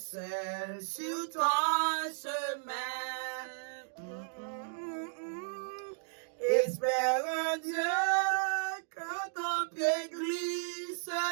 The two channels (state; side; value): silent; left; digital silence